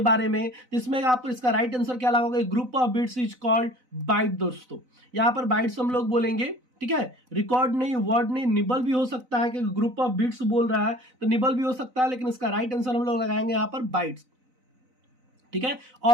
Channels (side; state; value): left; late; 4.0 ms